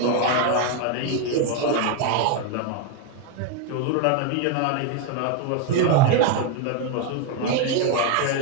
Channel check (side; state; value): both; different; correlation 0.01